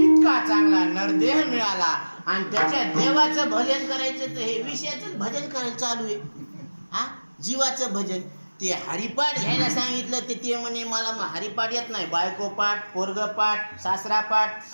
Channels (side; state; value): both; inverted; correlation -1.00